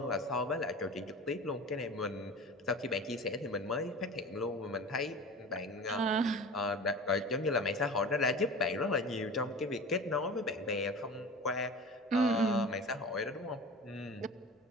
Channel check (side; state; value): both; normal; correlation 0.35